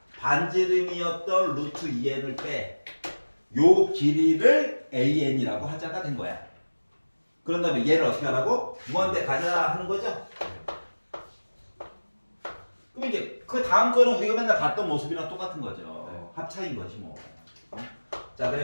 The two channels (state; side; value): inverted; both; correlation -1.00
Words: 반지름이었던 루트 2n을 빼. 요 길이를 an이라고 하자가 된 거야. 그런 다음에 얘를 어떻게 하라고? 무한대 가자 하는 거죠? 그럼 이제 그 다음 거는 우리가 맨날 봤던 모습이랑 똑같은 거죠. 합차인 거지 뭐. 자,